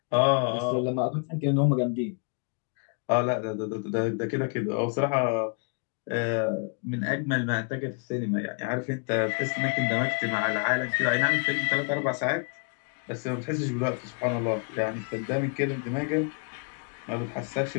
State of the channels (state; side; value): quieter; right; 39.0 dB